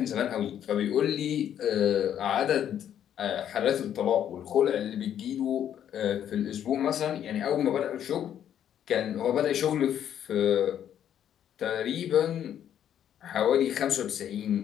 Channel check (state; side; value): quieter; right; 10.0 dB